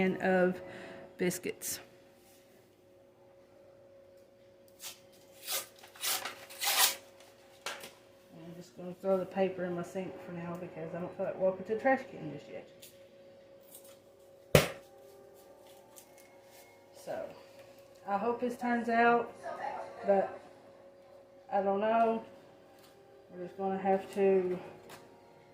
of biscuits. I'm just going to throw the paper in my sink for now because I don't feel like walking to the trash can just yet. So, I hope this turns out, but I don't know. We're just going to have to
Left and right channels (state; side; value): identical; both; correlation 1.00